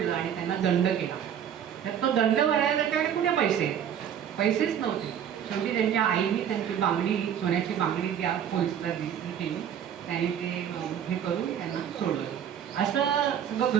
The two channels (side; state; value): left; quieter; 9.1 dB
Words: आणि त्यांना दंड केला. तर तो दंड भरायला त्याच्याकडे कुठे पैसेच नव्हते. शेवटी त्यांच्या आईने त्यांची बांगडी सोन्याची बांगडी त्या पोलिसला केली त्यांनी ते हे करून त्यांना सोडलं. असं सगळं